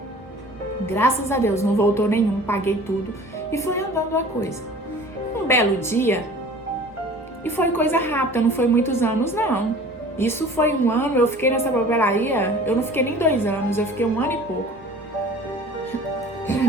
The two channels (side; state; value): both; normal; correlation 0.45